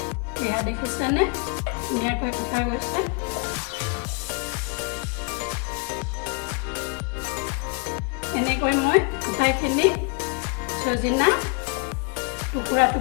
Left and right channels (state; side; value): quieter; right; 31.8 dB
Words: এয়া দেখিছেনে, ধুনীয়াকৈ কটা গৈছে। এনেকৈ মই আটাইখিনি সজিনা টুকুৰা